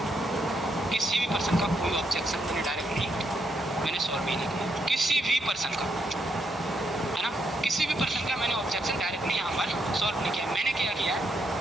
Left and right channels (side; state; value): both; normal; correlation 0.78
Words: किसी भी पर्सन का कोई ऑब्जेक्शन मैंने डायरेक्टली मैंने सॉल्व भी नहीं किया, किसी भी पर्सन का, है ना, किसी भी पर्सन का मैंने ऑब्जेक्शन डायरेक्टली यहाँ पर सॉल्व नहीं किया। मैंने क्या किया है,